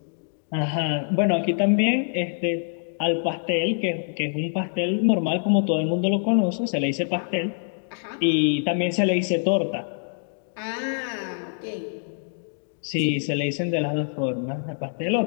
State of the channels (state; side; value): silent; right; digital silence